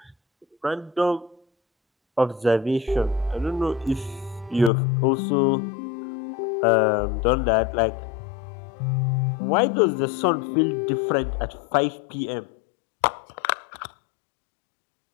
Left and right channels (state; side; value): drops out; right; at 4.7 s